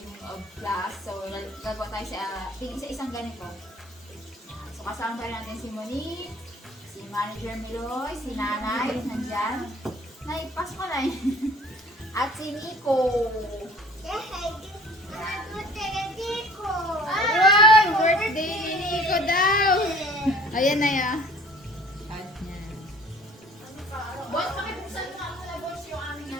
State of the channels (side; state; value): both; normal; correlation 0.50